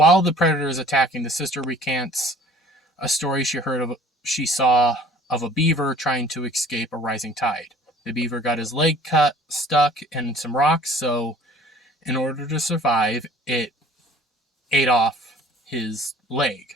the predator is attacking, the sister recants a story she saw of a beaver trying to escape a rising tide. The beaver got his leg stuck in some rocks, so in order to survive, it ate off his leg.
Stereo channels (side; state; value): both; normal; correlation 0.51